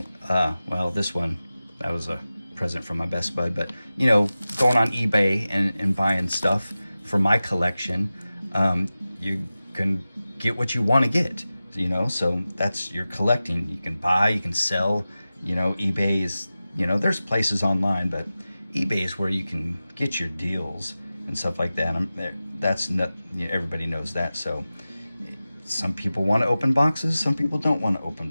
Well, this one, that was a present from my best bud, but you know, going on eBay and buying stuff for my collection, you can get what you want to get, you know. So that's, you're collecting. You can buy, you can sell, you know. eBay is, you know, there's places online, but eBay is where you can get your deals and stuff like that. That's not, you know, everybody knows that. So some people want to open boxes, some people don't want to open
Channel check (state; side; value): inverted; both; correlation -0.95